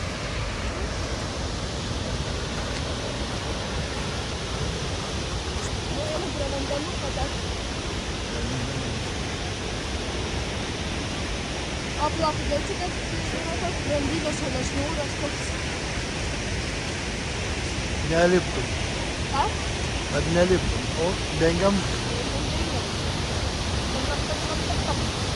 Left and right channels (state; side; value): identical; both; correlation 1.00